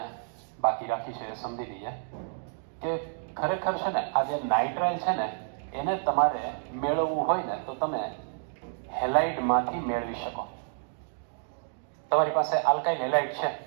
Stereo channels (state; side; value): silent; left; 58 dB below the other